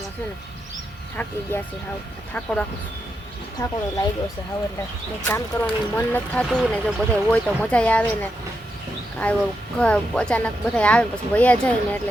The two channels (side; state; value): both; normal; correlation 0.84